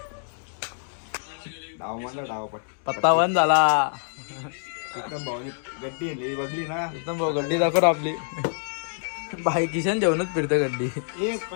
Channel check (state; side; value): silent; right; digital silence